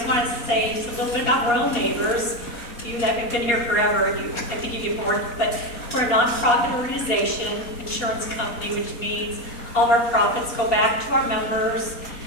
wanted to say just a little bit about Royal Neighbors. You that have been here forever, I think you get bored, but we're a nonprofit organization, insurance company, which means all of our profits go back to our members.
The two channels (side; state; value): right; late; 4.2 ms